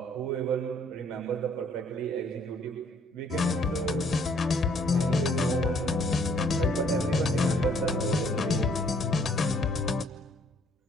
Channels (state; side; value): normal; both; correlation 0.63